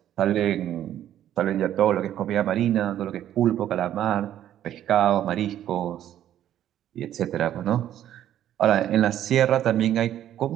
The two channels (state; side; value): quieter; left; 11.5 dB